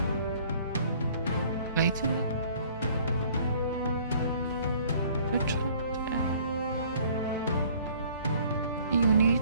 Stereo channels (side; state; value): both; inverted; correlation -0.56